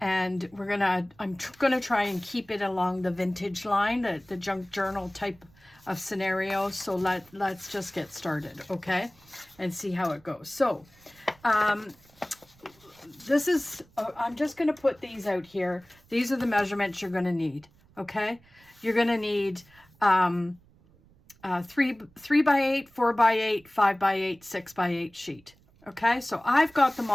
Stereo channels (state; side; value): noise; right; rumble, 29 dB below the sound